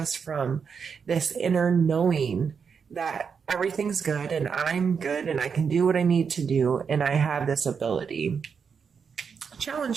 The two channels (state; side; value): quieter; left; 6.2 dB